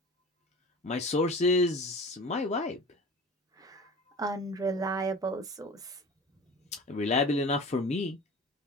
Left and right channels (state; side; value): normal; both; correlation 0.38